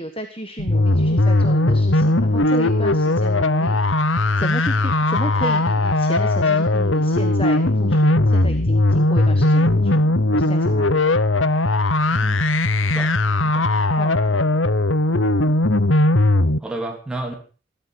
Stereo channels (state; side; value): normal; both; correlation 0.55